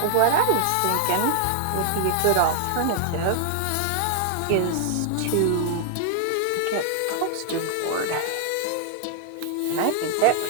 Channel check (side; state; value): both; different; correlation 0.00